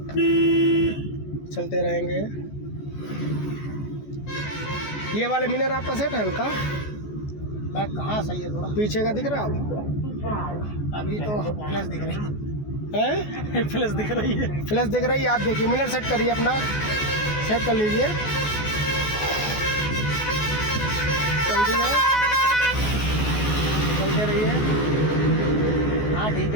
चलते रहेंगे। ये वाले मिरर आपका सेट है हल्का? बैक कहाँ सही है थोड़ा? पीछे का दिख रहा है आप? अभी तो प्लस दिख रही हैं? प्लस दिख रही है। फ्लैश दिख रही है? आप देखिए, मिरर सेट करिए अपना, सेट कर लीजिए। जल्दी है, चलते रहिए। हाँ ठीक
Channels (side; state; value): right; late; 14 ms